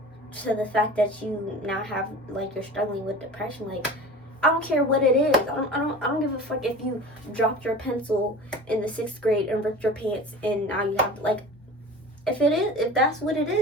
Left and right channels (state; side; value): normal; both; correlation 0.37